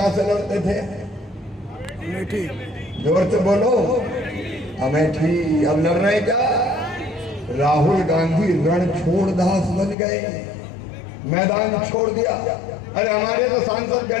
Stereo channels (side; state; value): right; drops out; at 10.0 s